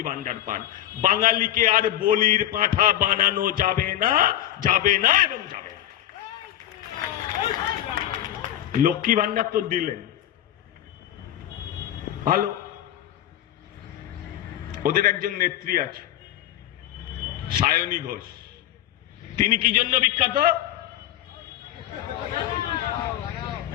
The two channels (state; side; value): quieter; right; 12.6 dB